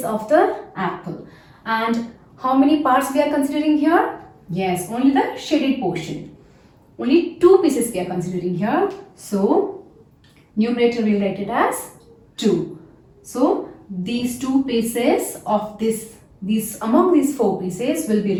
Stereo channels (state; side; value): identical; both; correlation 1.00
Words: of the apple. And how many parts we are considering here? Yes, only the shaded portion. Only 2 pieces we are considering here. So, numerator will write it as 2. So, these 2 pieces of among these 4 pieces will be